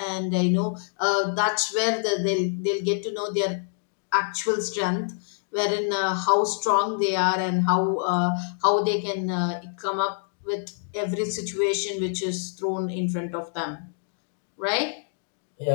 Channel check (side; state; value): right; silent; digital silence